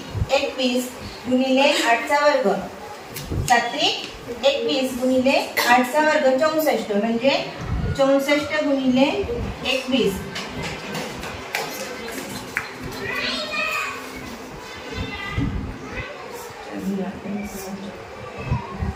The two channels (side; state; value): both; identical; correlation 1.00